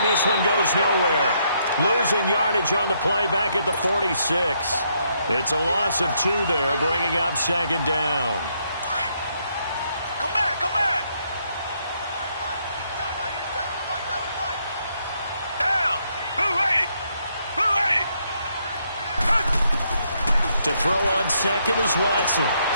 this one goes nowhere. Losing yardage on the play back at the 46. It's a loss of 2 there, bringing up 2nd down. To throw on 2nd is Watson.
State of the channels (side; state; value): both; inverted; correlation -0.74